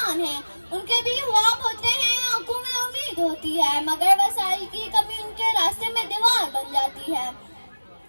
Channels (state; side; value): inverted; both; correlation -1.00